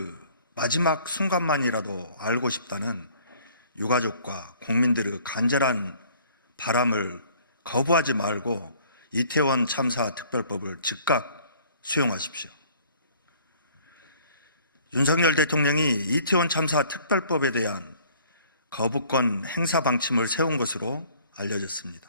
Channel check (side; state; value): both; inverted; correlation -0.56